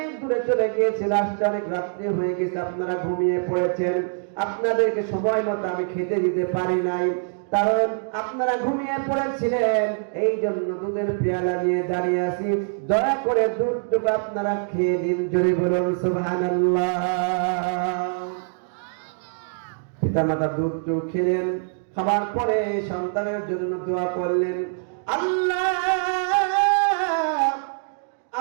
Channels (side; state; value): left; silent; digital silence